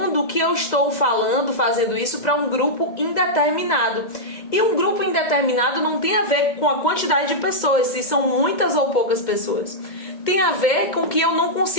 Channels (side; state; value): right; late; 2.0 ms